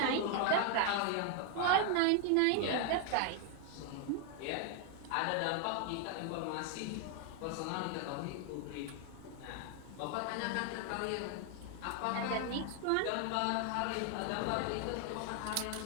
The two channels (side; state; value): both; different; correlation 0.00